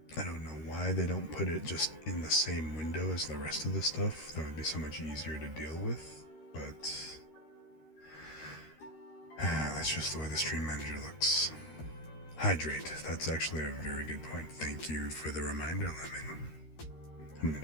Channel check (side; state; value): right; late; 13 ms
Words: I don't know why they don't put it just in the same window as the rest of the stuff. That would be so much easier to deal with, but that's just the way the Stream Manager looks. Hydrate. That's actually a very good point. Thank you for the reminder, Lemon. I'm